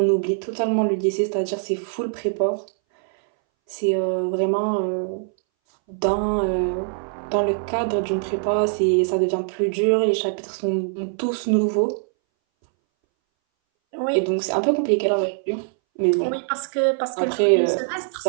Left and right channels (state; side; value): silent; left; 62 dB below the other